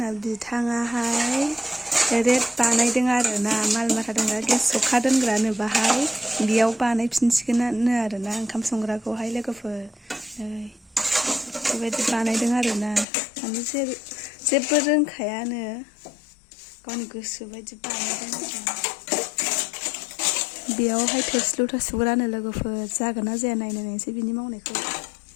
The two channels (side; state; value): right; drops out; at 13.1 s